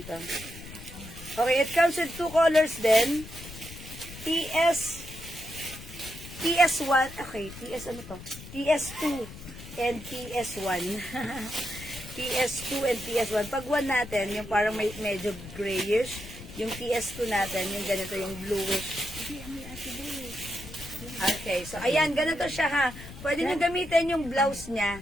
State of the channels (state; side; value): noise; left; rumble, 14 dB below the sound